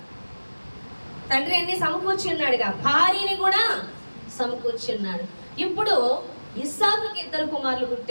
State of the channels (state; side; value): inverted; both; correlation -1.00